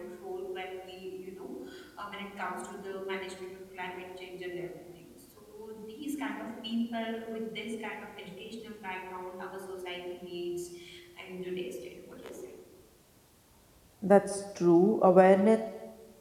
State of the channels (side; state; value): both; identical; correlation 1.00